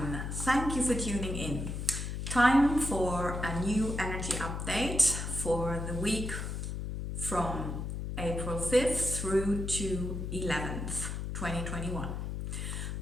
thank you for tuning in. Time for a new energy update for the week from April 5th through to 11th, 2021.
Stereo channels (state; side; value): noise; left; hum, 4 dB below the sound